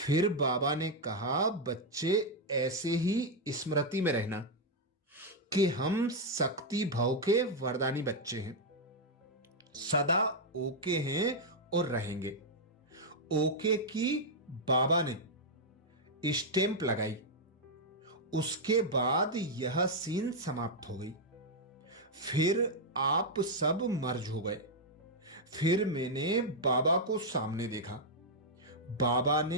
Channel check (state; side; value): normal; both; correlation -0.02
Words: बाबा ने कहा, बच्चे ऐसे ही स्मृति में रहना कि हम शक्ति भाव के वरदानी बच्चे हैं, सदा ओके हैं और रहेंगे। ओके की बाबा ने स्टैंप लगाई। उसके बाद यह सीन समाप्त हो गई। फिर आप सब मर्ज हो गए। फिर मैंने बाबा को सामने देखा। बाबा